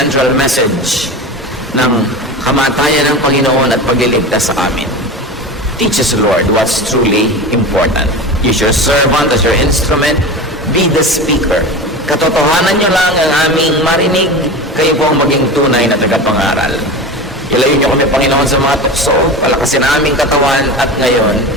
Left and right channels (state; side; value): normal; both; correlation 0.29